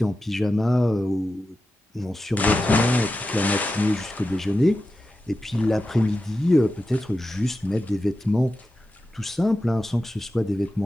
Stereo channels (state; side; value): normal; both; correlation 0.91